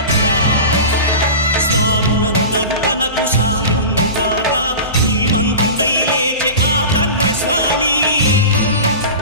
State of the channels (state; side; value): inverted; both; correlation -0.30